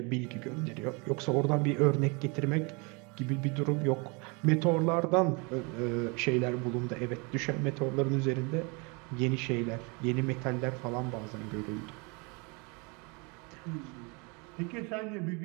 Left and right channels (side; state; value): left; quieter; 30.4 dB